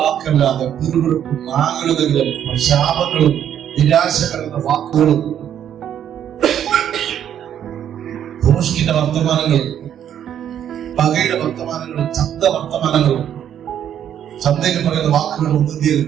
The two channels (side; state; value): left; quieter; 9.8 dB